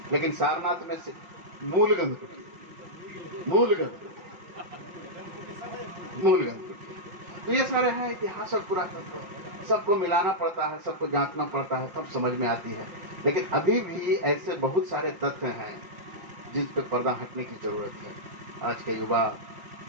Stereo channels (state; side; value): late; left; 5.7 ms